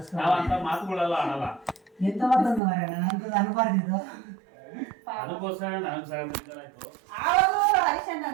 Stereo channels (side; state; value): left; drops out; at 2.6 s